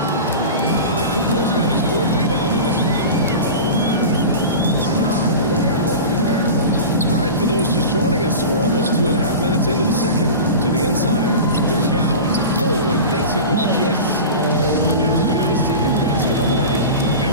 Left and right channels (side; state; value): both; inverted; correlation -0.31